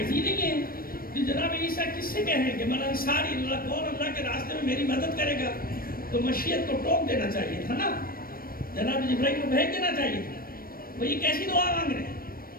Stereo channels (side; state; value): right; late; 0.43 ms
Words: ہی نہیں ہے. تو جناب عیسیٰ کس سے کہیں کہ من انصاری اللہ, کون اللہ کے راستے میں میری مدد کرے گا, تو مشیت کو ٹوک دینا چاہیے تھا نا, جناب جبرائیل کو بھیج دینا چاہیے تھا. وہ یہ کیسی دعا مانگ رہے ہیں,